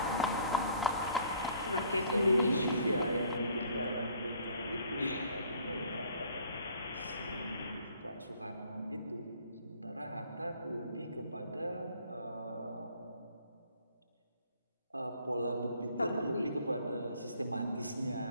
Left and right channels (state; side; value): inverted; both; correlation -0.58